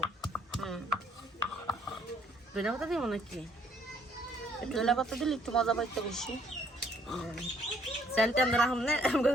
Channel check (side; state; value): both; normal; correlation 0.64